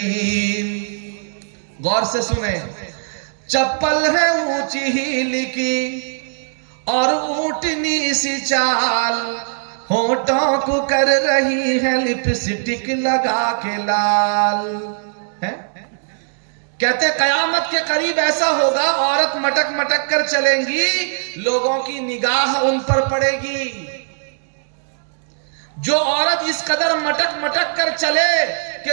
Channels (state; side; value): silent; left; digital silence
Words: غور سے سنیں. چپل ہے اونچی ہیل کی اور اونٹنی سی چال، ہونٹوں کو کر رہی ہے لپسٹک لگا کے لال. کہتے قیامت کے قریب ایسا ہوگا عورت مٹک مٹک کر چلیں گی، لوگوں کی نگاہ ان پر پڑے گی. جو عورت اس قدر مٹک مٹک کر چلے